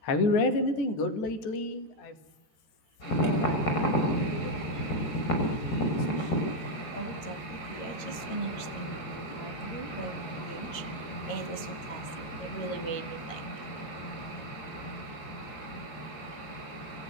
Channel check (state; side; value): late; right; 13 ms